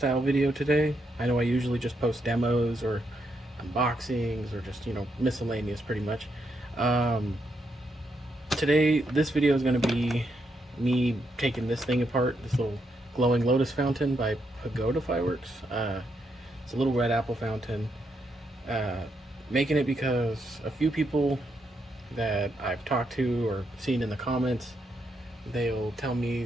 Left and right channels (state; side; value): normal; both; correlation 0.79